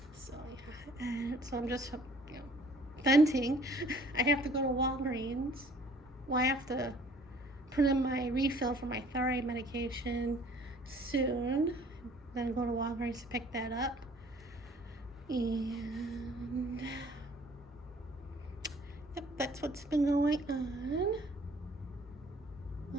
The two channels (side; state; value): both; normal; correlation 0.55